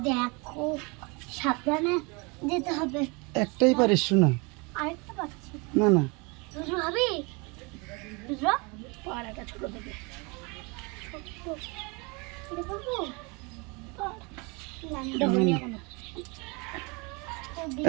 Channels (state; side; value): quieter; left; 29.2 dB